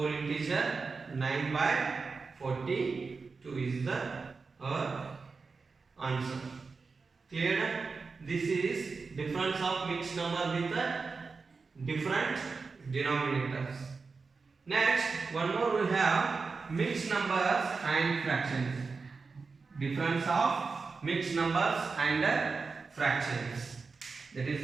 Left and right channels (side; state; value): left; quieter; 4.5 dB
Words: integer 9 by 42 is the answer. Clear? This is difference of mixed number with different denominators. Next, one more we have mixed numbers and fractions. Difference of mixed numbers and fractions. That